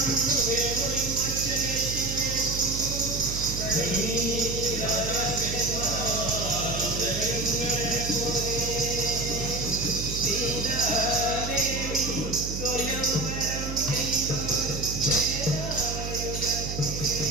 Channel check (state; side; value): noise; right; hum, 5 dB below the sound